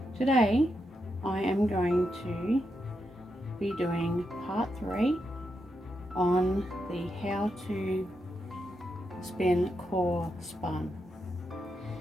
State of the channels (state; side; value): normal; both; correlation 0.84